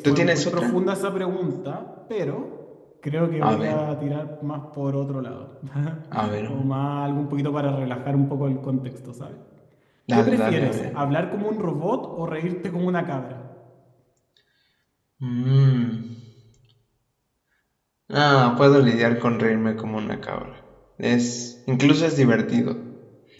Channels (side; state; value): both; identical; correlation 1.00